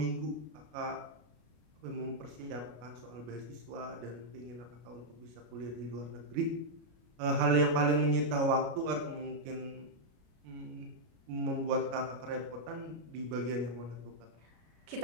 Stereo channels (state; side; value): late; left; 33 ms